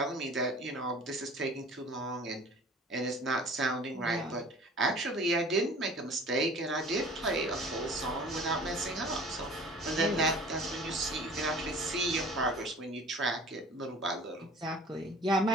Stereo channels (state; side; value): normal; both; correlation 0.46